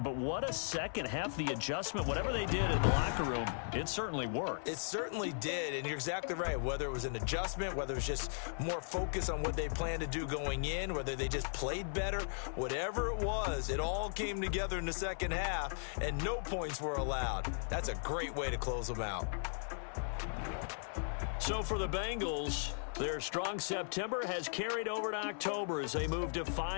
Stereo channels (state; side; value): silent; right; 53 dB below the other